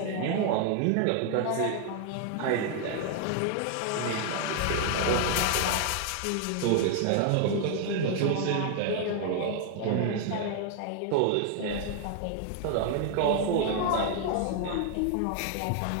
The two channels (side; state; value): both; different; correlation 0.00